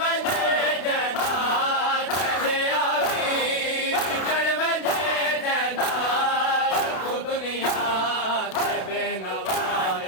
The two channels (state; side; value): late; right; 32 ms